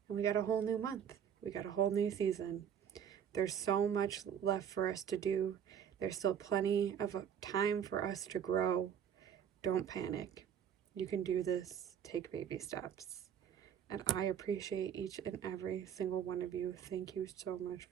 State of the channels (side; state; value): left; quieter; 8.5 dB